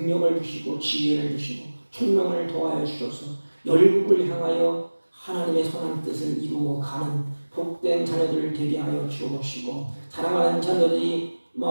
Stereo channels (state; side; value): inverted; both; correlation -1.00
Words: 주시고 지혜를 주시고 총명을 더하여 주셔서 열국을 향하여 하나님의 선한 뜻을 이루어가는 복된 자녀들을 되게 하여 주옵시고 사랑하는 자녀들이